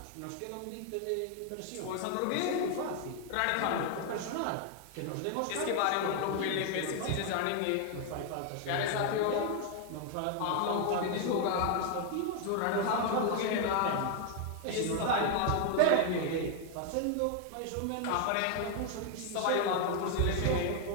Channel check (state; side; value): different; both; correlation 0.00